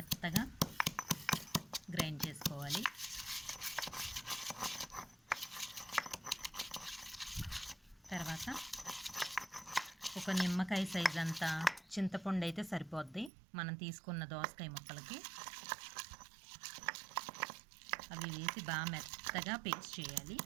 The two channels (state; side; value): drops out; left; at 13.3 s